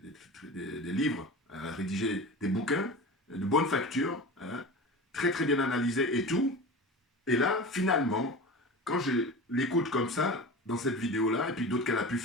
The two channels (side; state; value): both; normal; correlation 0.32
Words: livres, elle a rédigé des bouquins de bonne facture, hein, très très bien analysés et tout, et là, finalement, quand je l'écoute comme ça, dans cette vidéo-là, et puis d'autres qu'elle a pu